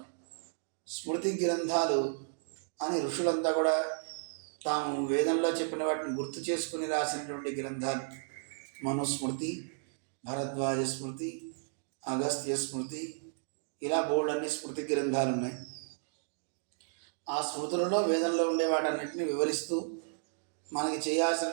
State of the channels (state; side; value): silent; left; digital silence